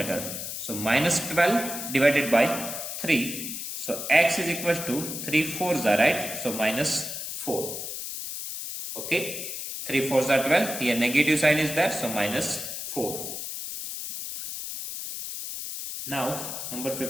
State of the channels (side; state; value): left; noise; hiss, 6 dB below the sound